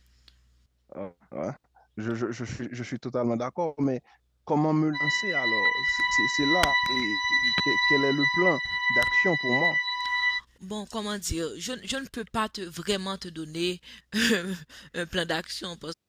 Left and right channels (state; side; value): identical; both; correlation 1.00